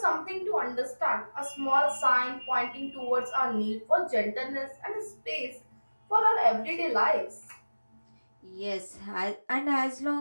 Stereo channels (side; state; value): both; inverted; correlation -1.00